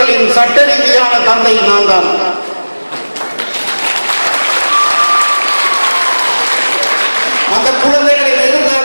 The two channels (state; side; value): inverted; both; correlation -1.00